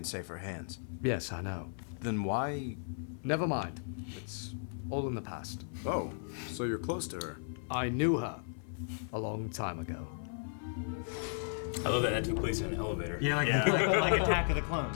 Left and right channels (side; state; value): right; silent; 54 dB below the other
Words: safer hands. Yes, I know. Then why? Never mind. It's all in the past. Oh, so you're close to her. I knew her a long time ago. I love that took place in an elevator. Yeah, like Attack of the